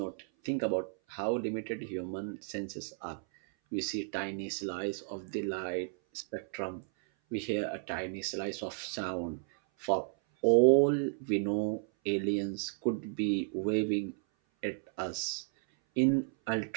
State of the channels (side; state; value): left; silent; 56 dB below the other